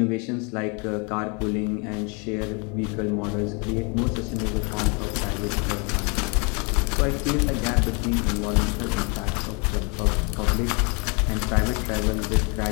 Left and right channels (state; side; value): quieter; right; 32.9 dB